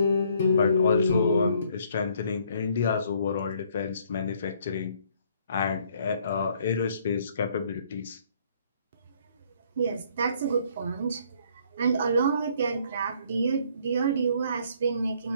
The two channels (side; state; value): both; inverted; correlation -0.64